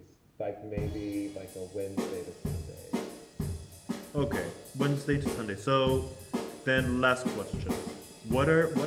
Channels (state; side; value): identical; both; correlation 1.00